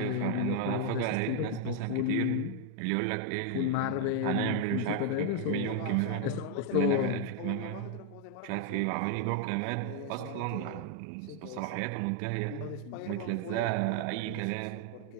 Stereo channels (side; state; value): both; different; correlation 0.00